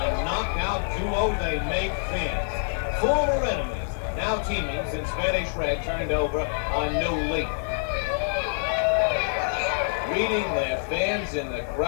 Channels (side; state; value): right; silent; digital silence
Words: knockout duo they make fans. Former enemies, now teaming since Spanish Red turned over a new leaf. Reading their fans in the